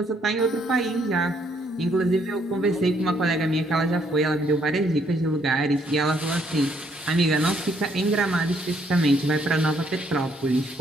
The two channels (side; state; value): both; normal; correlation 0.69